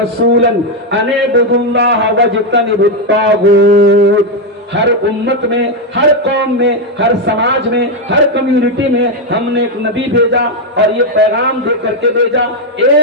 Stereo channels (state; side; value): normal; both; correlation 0.04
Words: أَنِ اعْبُدُوا اللَّهَ وَاجْتَنِبُوا الطَّاغُوتَ۔ ہر امت میں، ہر قوم میں، ہر سماج میں، ہر کمیونٹی میں ہم نے ایک نبی بھیجا اور یہ پیغام دے کر کے بھیجا،